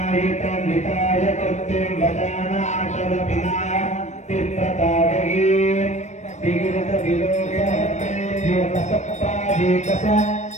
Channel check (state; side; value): late; right; 0.34 ms